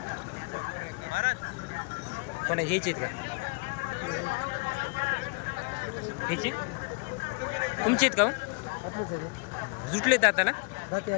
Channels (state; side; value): quieter; right; 32.0 dB